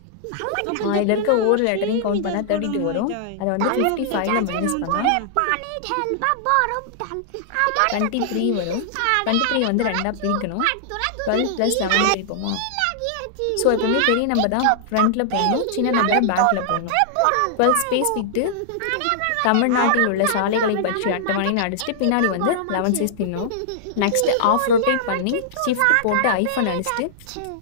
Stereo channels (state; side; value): different; both; correlation -0.01